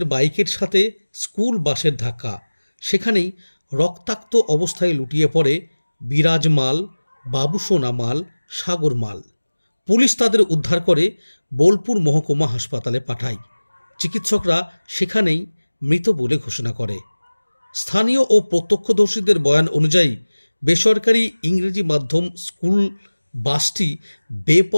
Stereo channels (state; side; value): inverted; both; correlation -1.00